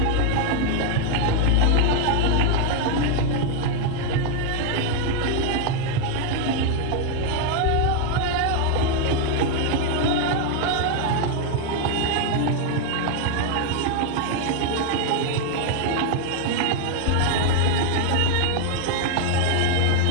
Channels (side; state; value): both; different; correlation 0.01